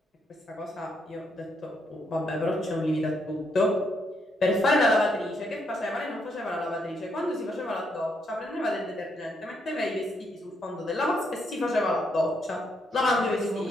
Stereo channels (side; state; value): both; normal; correlation 0.76